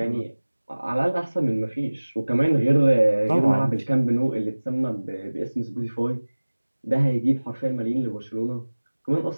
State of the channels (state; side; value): inverted; both; correlation -1.00